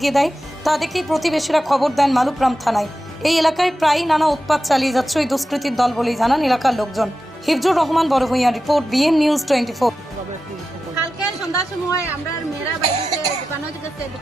দেয়। তা দেখেই প্রতিবেশীরা খবর দেন মালুগ্রাম থানায়। এই এলাকায় প্রায়ই নানা উৎপাত চালিয়ে যাচ্ছে ওই দুষ্কৃতীর দল বলেই জানান এলাকার লোকজন। Hifzur Rahman Barbhuiya report, BN news 24। কালকে সন্ধ্যার সময় আমরা মেয়েরা বাড়িতে দোকানে গেছে,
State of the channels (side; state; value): both; normal; correlation 0.92